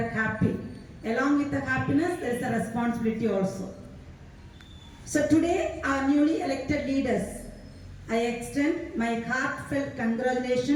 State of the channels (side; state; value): both; identical; correlation 1.00